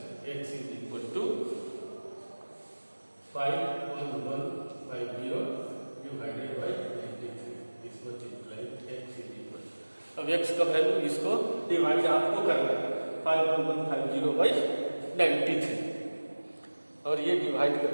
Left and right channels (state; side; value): inverted; both; correlation -1.00